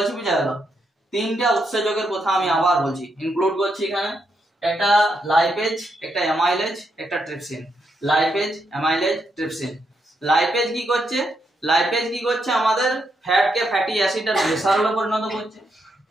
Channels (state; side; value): normal; both; correlation 0.80